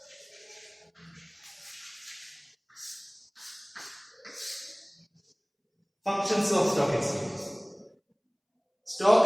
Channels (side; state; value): both; identical; correlation 1.00